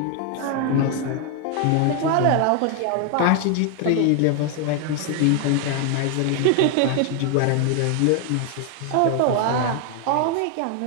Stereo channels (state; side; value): different; both; correlation 0.01